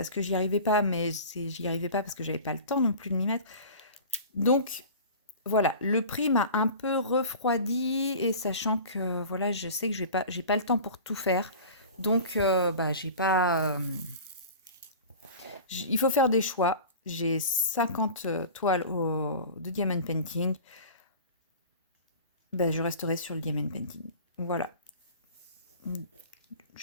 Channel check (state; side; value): inverted; both; correlation -0.38